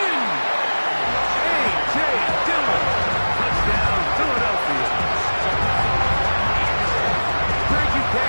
A.J. Dillon. Touchdown, Philadelphia. Greg, you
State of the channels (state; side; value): inverted; both; correlation -1.00